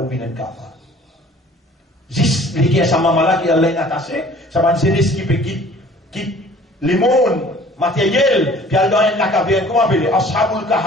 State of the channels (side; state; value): both; normal; correlation 0.51